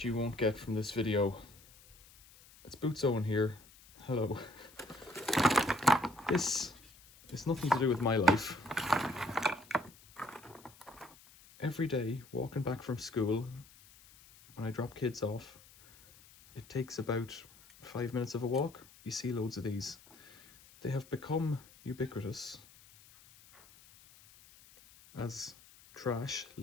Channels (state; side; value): noise; left; hiss, 24 dB below the sound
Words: you won't get from this video. It's Boots Owen here. Hello. This is nothing to do with my life. Every day, walking back from school, when I drop kids off, it takes about 5 minutes of a walk. You see loads of these. They have become ubiquitous as trash,